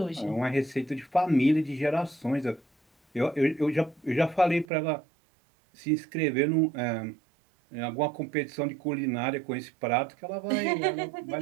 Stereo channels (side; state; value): left; drops out; at 4.7 s